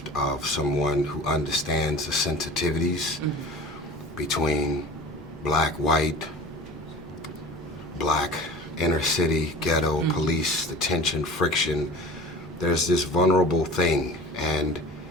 of someone who understands the sensitivities between black, white, black inner city, ghetto, police, the tension, friction. There's this vulnerable thing, and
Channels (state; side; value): noise; right; hum, 20 dB below the sound